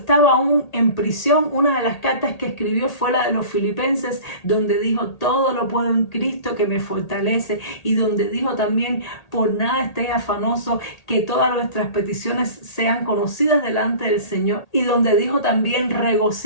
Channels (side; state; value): right; late; 1.8 ms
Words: aún en prisión. Una de las cartas que escribió fue la de los Filipenses, donde dijo: todo lo puedo en Cristo que me fortalece, y donde dijo también: por nada estéis afanosos, que todas nuestras peticiones sean conocidas delante del Señor, y donde dijo también: